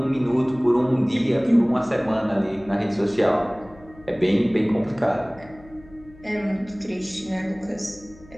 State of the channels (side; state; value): left; noise; hum, 23 dB below the sound